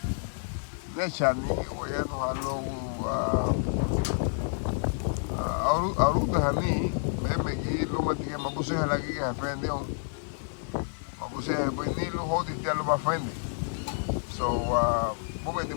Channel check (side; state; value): right; silent; 58 dB below the other